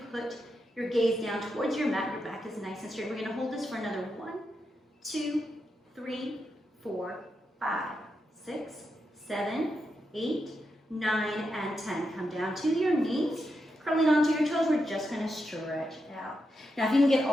put your gaze down towards your mat, your back is nice and straight. We're gonna hold this for another 1, 2, 3, 4, 5, 6, 7, 8, 9, and 10. Come down to your knees, curling onto your toes. We're just going to stretch out. Now, if you can get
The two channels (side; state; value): both; normal; correlation 0.85